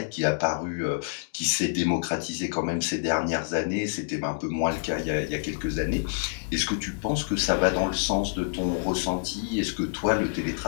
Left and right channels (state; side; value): silent; right; digital silence